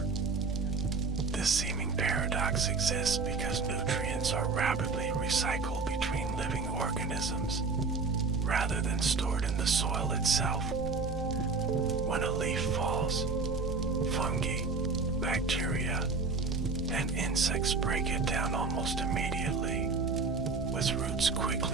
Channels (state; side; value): quieter; left; 4.2 dB